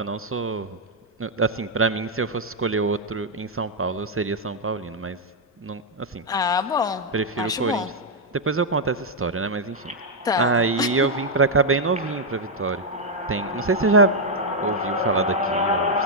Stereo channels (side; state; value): both; normal; correlation -0.02